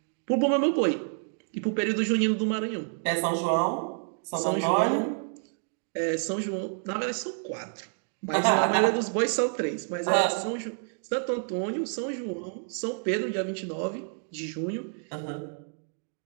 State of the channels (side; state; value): left; silent; 59 dB below the other